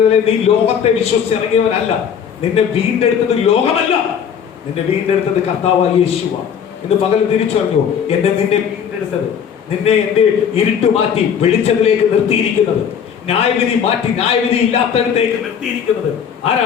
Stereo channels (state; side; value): quieter; right; 7.8 dB